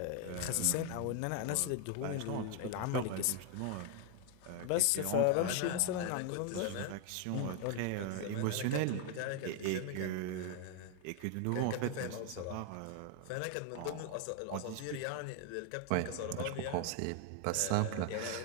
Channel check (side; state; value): both; different; correlation 0.00